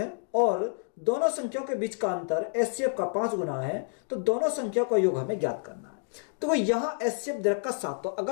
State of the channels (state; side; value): silent; right; 59 dB below the other